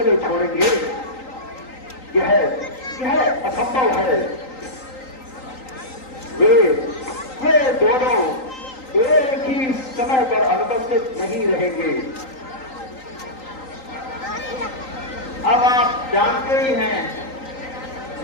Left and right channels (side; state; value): right; late; 3.9 ms